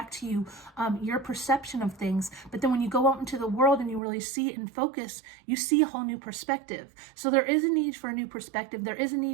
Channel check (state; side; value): drops out; left; at 4.0 s